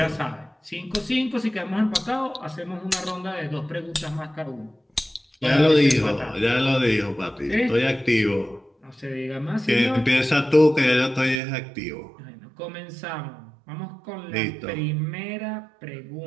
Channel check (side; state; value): left; drops out; at 11.4 s